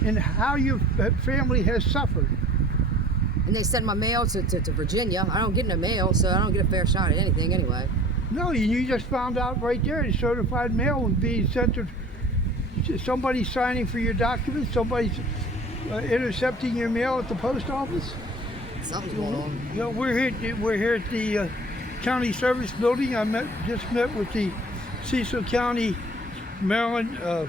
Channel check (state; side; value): normal; both; correlation 0.46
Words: and how your family has suffered. And they sent my mail to Virginia. I don't get no mail, so I don't get a fair shot at anything anyway. No, you just found out right there the certified mail was being sent to somebody signing for your documents, somebody's intercepting your mail at the post office. Something's going on. You know, we're here at the county service building. I just met with the Cecil County Maryland